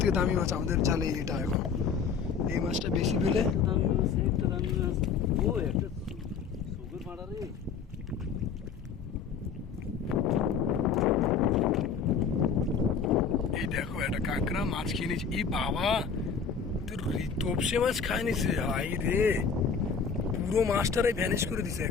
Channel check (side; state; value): right; quieter; 6.2 dB